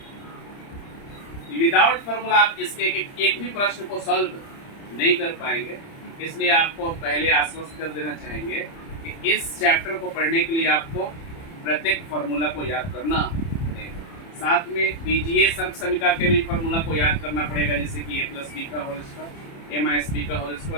विदाउट फार्मूला आप इसके एक भी प्रश्न को सॉल्व नहीं कर पाएंगे। इसलिए आपको पहले आश्वस्त कर देना चाहेंगे कि इस चैप्टर को पढ़ने के लिए आपको प्रत्येक फार्मूला को याद करना पड़ेगा। साथ में बीजीय सर्व समीकरण के भी फार्मूला को याद करना पड़ेगा, जैसे कि a+b का होल स्क्वायर, a-b का होल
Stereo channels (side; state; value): right; late; 30 ms